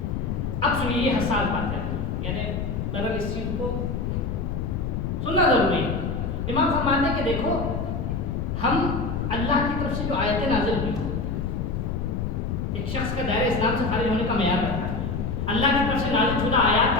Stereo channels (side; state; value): left; noise; rumble, 2 dB below the sound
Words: اب سنیے یہ حساس بات ہے, یعنی بہرحال اس چیز کو سننا ضروری ہے. امام فرماتے ہیں کہ دیکھو ہم اللہ کی طرف سے جو آیتیں نازل ہوئی ایک شخص کا دائرہ اسلام سے خارج ہونے کا معیار رکھتا ہے. اللہ کی طرف سے نازل شدہ آیات